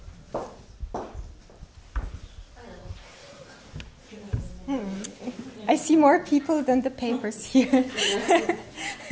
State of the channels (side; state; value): both; identical; correlation 1.00